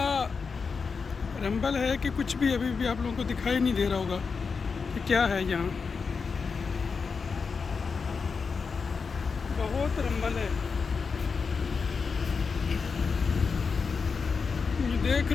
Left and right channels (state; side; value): quieter; right; 5.2 dB